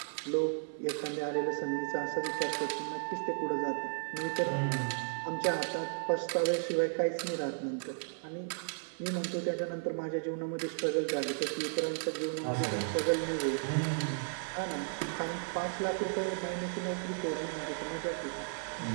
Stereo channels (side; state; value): left; silent; 55 dB below the other